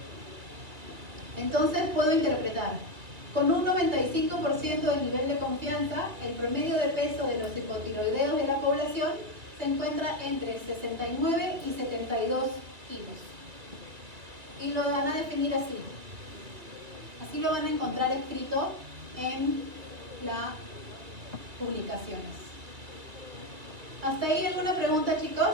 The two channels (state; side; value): late; left; 2.4 ms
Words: Entonces puedo interpretar. Con un 95% de nivel de confianza, el promedio de peso de los hipotiroideos de la población se encuentra entre 69 y 72 kilos. Y lo van a definir así. Así lo van a encontrar escrito en las publicaciones. ¿Hasta ahí alguna pregunta,